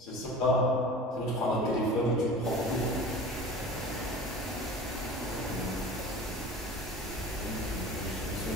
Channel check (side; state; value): both; normal; correlation 0.38